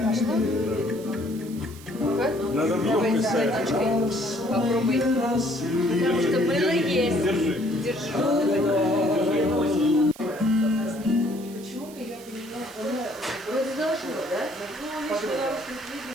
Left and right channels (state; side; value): noise; right; hiss, 20 dB below the sound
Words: Надо в Давай водичкой попробуй. Потому что мыло есть. Держи. Вроде должно, да?